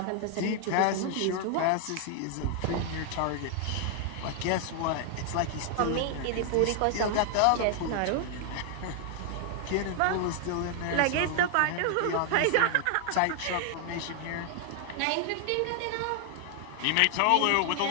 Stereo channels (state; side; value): different; both; correlation 0.00